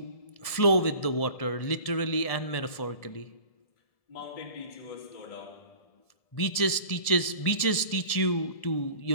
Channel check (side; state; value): right; late; 1.7 ms